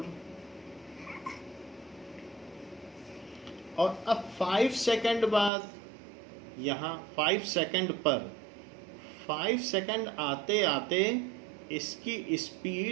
और अब 5 सेकंड बाद यहाँ 5 सेकंड पर 5 सेकंड आते आते इसकी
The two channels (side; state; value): left; drops out; at 5.5 s